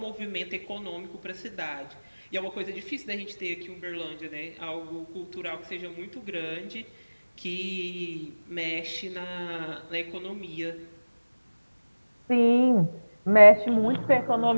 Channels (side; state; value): both; inverted; correlation -1.00